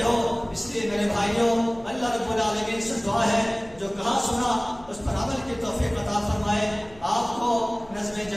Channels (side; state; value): left; noise; hum, 24 dB below the sound